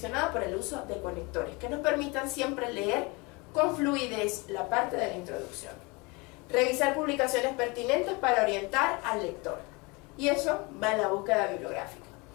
por el uso de conectores que nos permitan siempre leer con fluidez la parte de la introducción. Revisar publicaciones pertinentes para orientar al lector, y eso va en la búsqueda bibliográfica.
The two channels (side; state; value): right; quieter; 27.1 dB